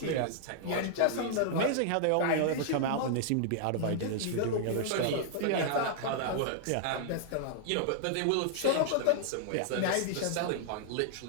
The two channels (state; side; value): different; both; correlation -0.01